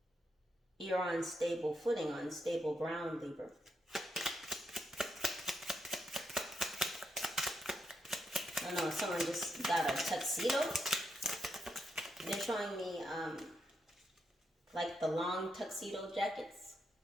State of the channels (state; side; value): normal; both; correlation 0.81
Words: You're on stable footing, on stable ground, Libra. I don't know, someone just got a tuxedo. They're showing me like the long tuxedo jackets.